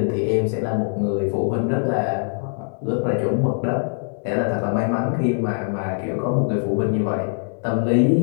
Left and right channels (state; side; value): silent; right; 64 dB below the other